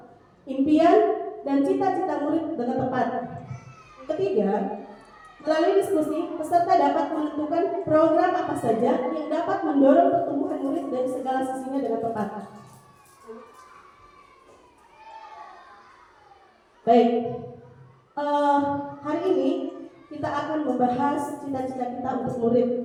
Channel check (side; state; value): both; identical; correlation 1.00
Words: impian dan cita-cita murid dengan tepat. Ketiga, melalui diskusi, peserta dapat menentukan program apa saja yang dapat mendorong pertumbuhan murid dari segala sisinya dengan tepat. Baik, hari ini kita akan membahas cita-cita kita untuk murid.